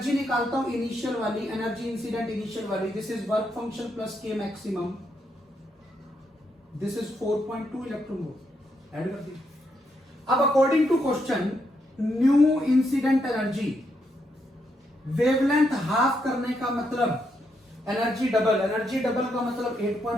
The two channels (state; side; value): normal; both; correlation 0.79